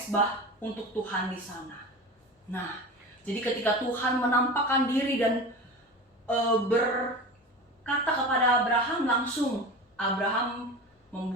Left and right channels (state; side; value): normal; both; correlation 0.31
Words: untuk Tuhan di sana. Nah, jadi ketika Tuhan menampakkan diri dan berkata kepada Abraham, langsung Abraham